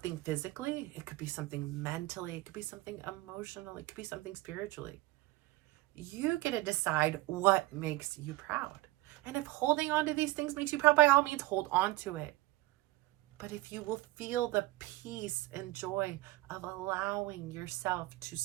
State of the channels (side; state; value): left; quieter; 19.0 dB